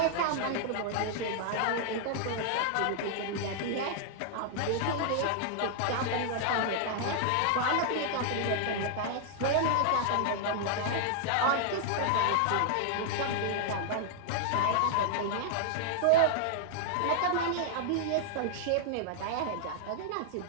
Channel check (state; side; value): different; both; correlation -0.01